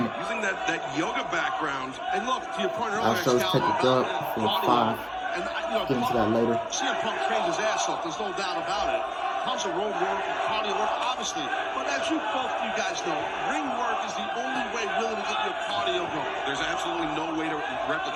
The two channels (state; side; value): identical; both; correlation 1.00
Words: it. using that yoga background. And look, to your point earlier, Our show's take a dub for 5. Get into that later. CM Punk trains his ass off. There's no doubt about it. Tons of road work and cardio work, obviously. But as you guys know, ring work is the only way really to get your cardio going. There's absolutely no way to